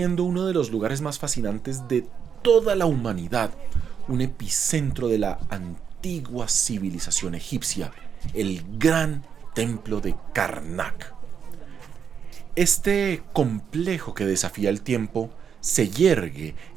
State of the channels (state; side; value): quieter; left; 7.3 dB